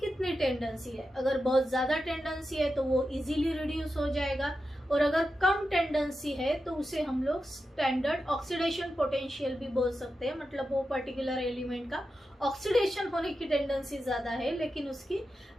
टेंडेंसी है। अगर बहुत ज्यादा टेंडेंसी है तो वो इजीली रिड्यूस हो जाएगा, और अगर कम टेंडेंसी है तो उसे हम लोग स्टैंडर्ड ऑक्सीडेशन पोटेंशियल भी बोल सकते हैं, मतलब वो पर्टिकुलर एलिमेंट का ऑक्सीडेशन होने की टेंडेंसी ज्यादा है लेकिन उसकी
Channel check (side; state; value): both; normal; correlation 0.90